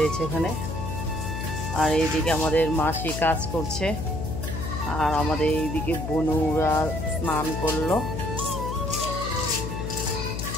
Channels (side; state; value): left; noise; hum, 5 dB below the sound